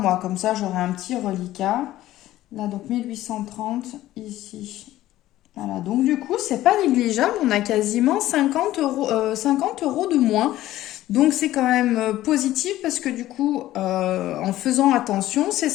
Comme ça, j'aurai un petit reliquat. Là, donc 1830 ici. Voilà, donc du coup, c'est pas négligeable. On a quasiment 50 € de moins. Donc c'est quand même positif parce que du coup, en faisant attention, ces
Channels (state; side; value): quieter; right; 14.8 dB